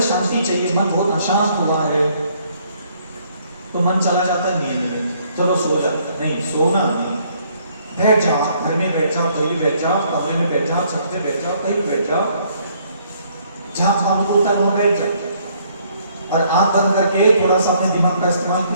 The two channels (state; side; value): inverted; both; correlation -0.66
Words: शांति चाहिए, मन बहुत अशांत हुआ है, तो मन चला जाता है नींद में, चलो सो जाता। नहीं, सोना नहीं। बैठ जाओ, घर में बैठ जाओ, कहीं भी बैठ जाओ, कमरे में बैठ जाओ, छत पे बैठ जाओ, कहीं भी बैठ जाओ, जहां काम होता है वहां बैठ जाओ और आंख बंद करके थोड़ा सा अपने दिमाग का इस्तेमाल